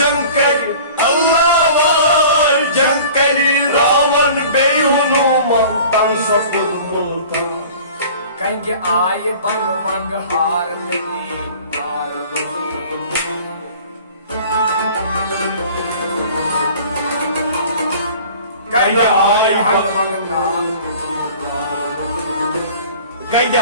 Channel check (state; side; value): inverted; both; correlation -0.45